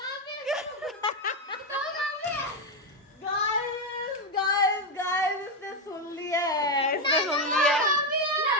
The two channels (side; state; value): both; normal; correlation 0.07